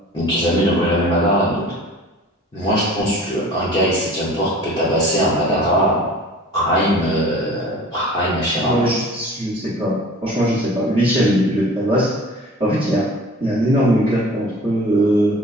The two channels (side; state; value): both; normal; correlation 0.44